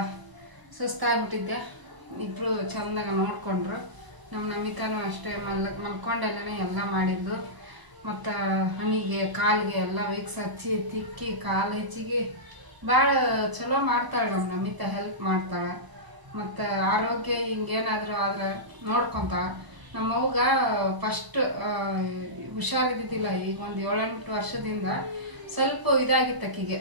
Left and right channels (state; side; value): late; left; 1.0 ms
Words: ಸುಸ್ತಾಗ್ಬಿಟ್ಟಿದ್ದೆ, ಇಬ್ಬರು ಚೆಂದಾಗ ನೋಡಿಕೊಂಡ್ರು. ನಮ್ಮ ನಮಿತಾನು ಅಷ್ಟೇ ಮಲ್ಕೊಂಡಲ್ಲೇ ಎಲ್ಲ ಮಾಡಿದ್ದು. ಮತ್ತು ಹಣ್ಣಿಗೆ ಕಾಲಿಗೆ ಎಲ್ಲ ವಿಕ್ಸ್ ಹಚ್ಚಿ ತಿಕ್ಕಿ ಕಾಲು ಹೆಚ್ಚಿಗೆ ಭಾಳ ಚಲೋ ಮಾಡ್ತಾಳೆ ನಮ್ಮ ನಮಿತಾ, ಹೆಲ್ಪ್ ಮಾಡ್ತಾಳೆ. ಮತ್ತು ಆರೋಗ್ಯ ಹಿಂಗೇನಾದರೂ ಆದ್ರೆ ನೋಡ್ಕೊತಾಳೆ. ನಮ್ಮವ್ಗ ಫಸ್ಟ್ ಹುಷಾರಿದ್ದಿದ್ದಿಲ್ಲ, ಈಗ ಒಂದು 7-8 ವರ್ಷದಿಂದ ಸ್ವಲ್ಪ ಇದಾಗಿತ್ತು ಆಕಿಗೆ,